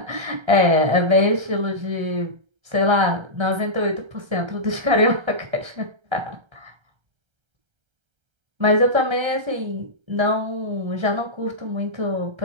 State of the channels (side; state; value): left; late; 1.3 ms